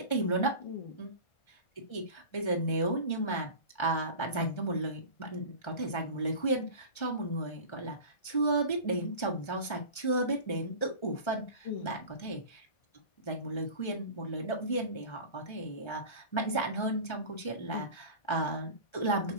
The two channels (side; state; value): right; late; 1.3 ms